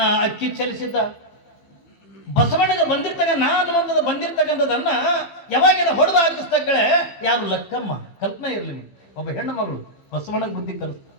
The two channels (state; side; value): late; right; 15 ms